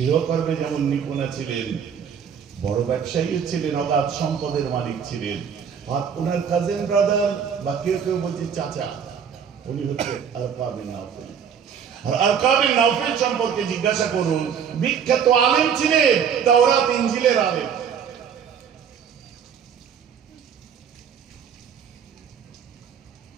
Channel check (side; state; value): left; quieter; 7.5 dB